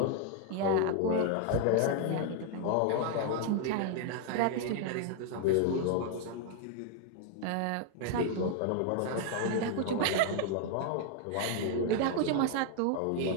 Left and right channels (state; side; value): different; both; correlation 0.00